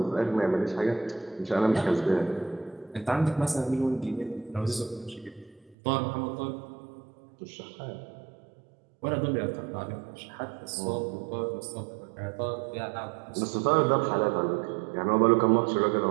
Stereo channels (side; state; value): left; drops out; at 5.8 s